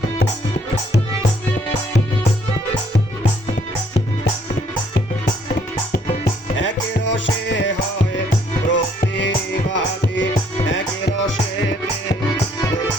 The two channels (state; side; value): normal; both; correlation 0.66